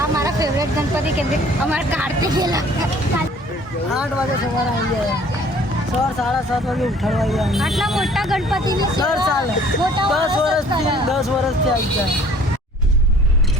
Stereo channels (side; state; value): both; normal; correlation 0.54